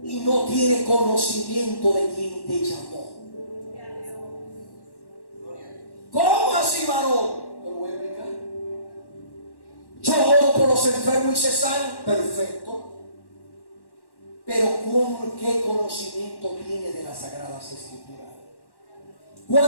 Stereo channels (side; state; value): right; late; 1.1 ms